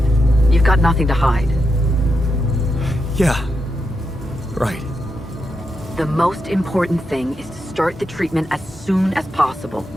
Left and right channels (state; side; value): normal; both; correlation 0.85